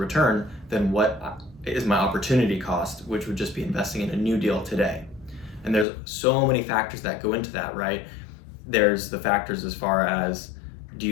than what is my opportunity cost, which would just be investing in a new deal today? And there's so many factors that go into that, right? There's the factors as far as, do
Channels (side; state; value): right; drops out; at 5.9 s